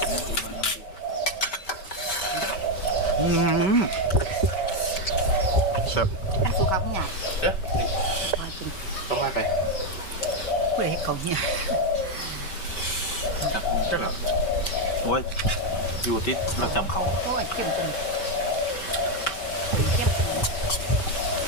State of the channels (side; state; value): right; late; 5.2 ms